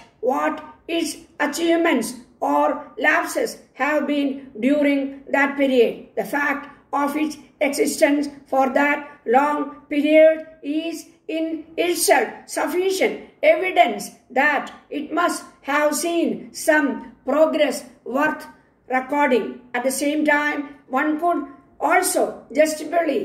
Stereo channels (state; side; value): identical; both; correlation 1.00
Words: what its achievements or lapses have been during that period. The fact of its existence for that long period is in itself sufficient evidence that it must have seen some progress worth recording. At the same time, one could also